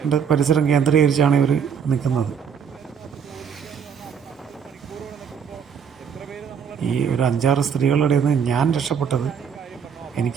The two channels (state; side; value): quieter; left; 7.2 dB